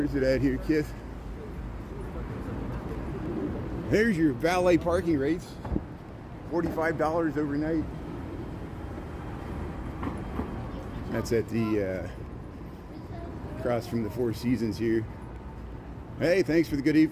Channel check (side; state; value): both; identical; correlation 1.00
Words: it at here, Kith? There's your valet parking rates. $45 overnight. That's at the across from the Four Seasons here. Hey, thanks for the good